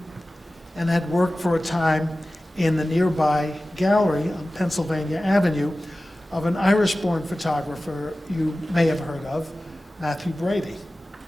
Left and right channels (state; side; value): normal; both; correlation 0.96